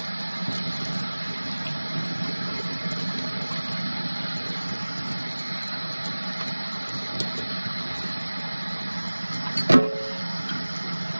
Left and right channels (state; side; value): inverted; both; correlation -1.00